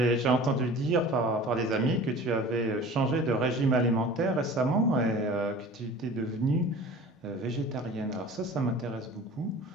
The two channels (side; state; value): both; normal; correlation 0.42